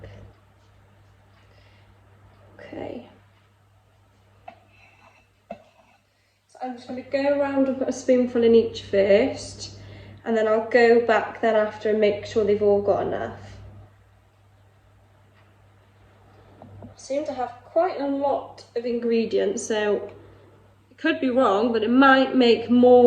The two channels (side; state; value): both; identical; correlation 1.00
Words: I'm just going to go around and put a spoonful in each first, and then I'll go back then after and make sure they've all got enough. I seem to have quite a lot of ingredients, so it could be wrong, but it might make